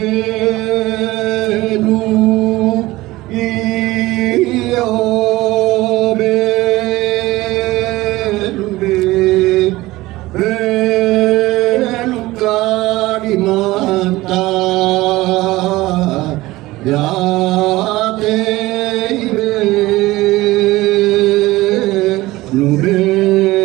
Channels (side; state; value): left; quieter; 18.7 dB